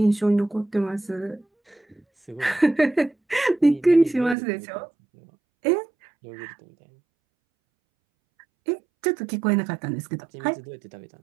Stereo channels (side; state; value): left; drops out; at 4.4 s